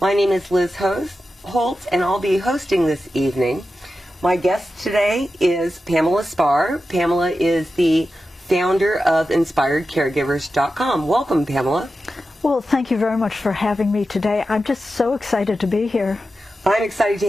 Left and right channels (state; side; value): normal; both; correlation 0.91